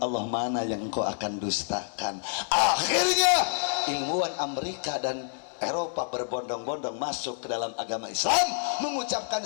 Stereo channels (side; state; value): right; silent; 59 dB below the other